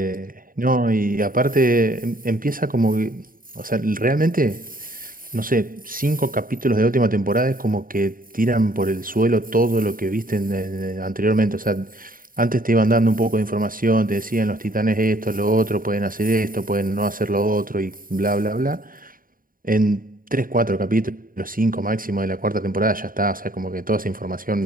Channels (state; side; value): late; left; 0.41 ms